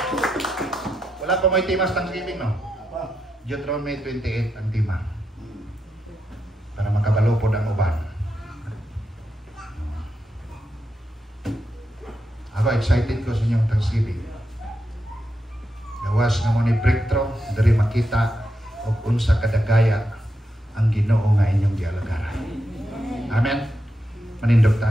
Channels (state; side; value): normal; both; correlation 0.85